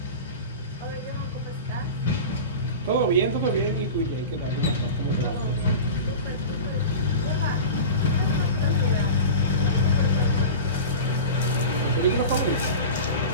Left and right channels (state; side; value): inverted; both; correlation -0.31